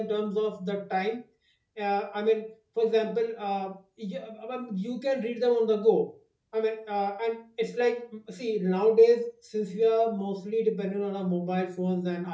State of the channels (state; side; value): identical; both; correlation 1.00